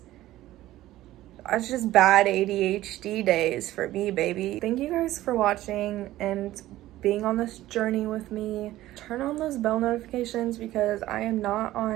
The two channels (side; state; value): left; quieter; 15.3 dB